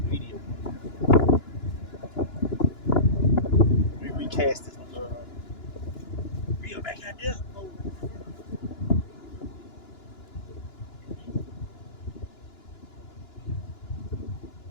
a video. Let me recast this reel back out there.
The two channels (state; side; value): late; right; 2.9 ms